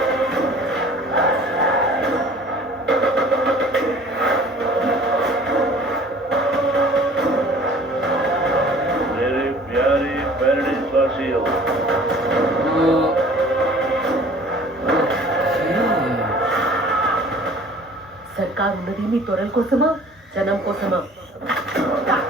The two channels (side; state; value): both; normal; correlation 0.49